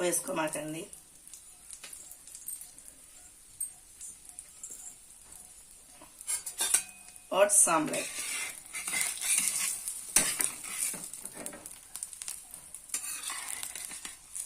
వేసుకోమాకండి. ఓట్స్ ఆమ్లెట్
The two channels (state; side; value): identical; both; correlation 1.00